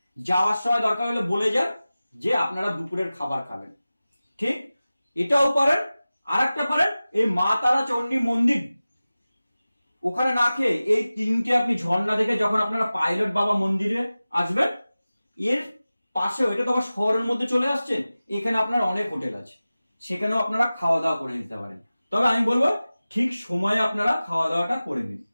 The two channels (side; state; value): both; inverted; correlation -0.97